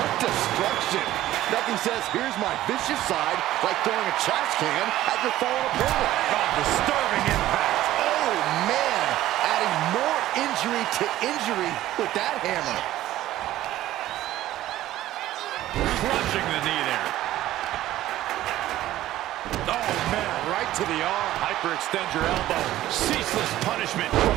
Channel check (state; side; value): quieter; left; 14.5 dB